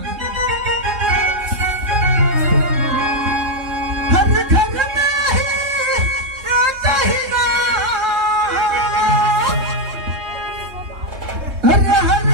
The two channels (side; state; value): left; late; 3.7 ms